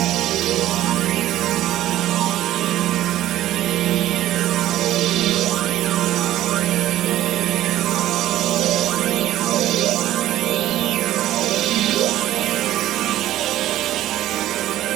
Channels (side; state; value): left; quieter; 13.9 dB